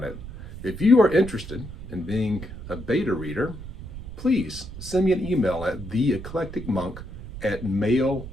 it. If you are interested in being a beta reader, please send me an email at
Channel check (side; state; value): right; noise; rumble, 11 dB below the sound